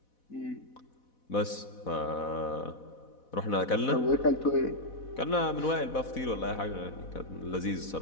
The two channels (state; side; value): late; right; 4.1 ms